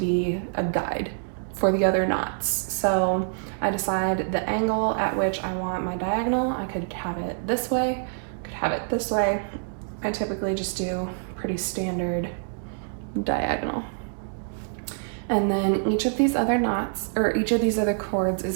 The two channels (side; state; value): left; silent; digital silence